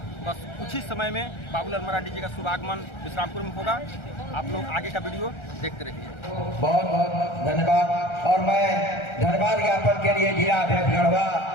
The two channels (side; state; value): right; late; 1.3 ms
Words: बस कुछ ही समय में बाबूलाल मरांडी जी का शुभागमन विश्रामपुर में होगा। आप लोग आगे का वीडियो देखते रहिए। बहुत बहुत धन्यवाद। और मैं धन्यवाद ज्ञापन के लिए जिला अध्यक्ष गढ़वा